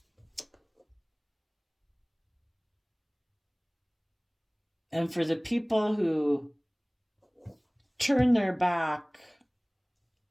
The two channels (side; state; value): both; identical; correlation 1.00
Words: And for the people who turn their back